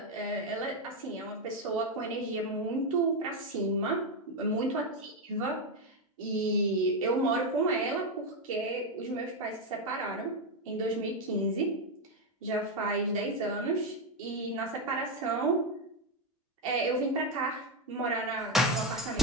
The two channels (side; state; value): both; normal; correlation 0.07